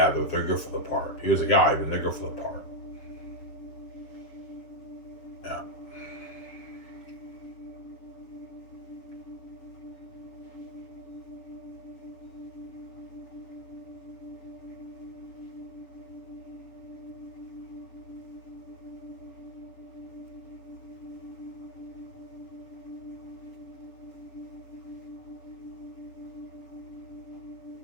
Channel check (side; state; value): right; late; 7.4 ms